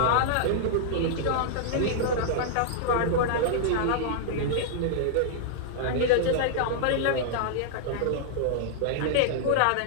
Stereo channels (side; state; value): both; different; correlation -0.01